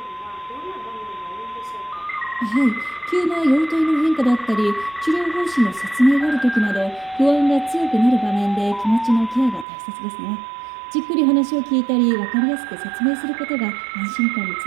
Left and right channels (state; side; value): drops out; left; at 9.7 s